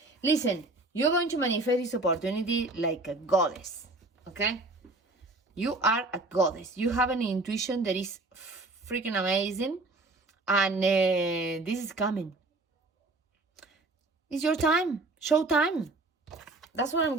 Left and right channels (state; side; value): quieter; left; 3.0 dB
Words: Listen, you're going to manifest this opportunity like a goddess, okay? You are a goddess. You have an intuition that is freaking amazing, and this is coming. It's your time. Show time. That's what I'm